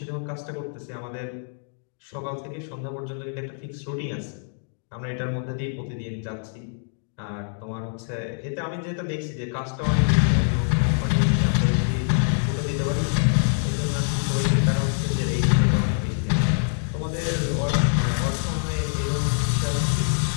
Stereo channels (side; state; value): right; silent; digital silence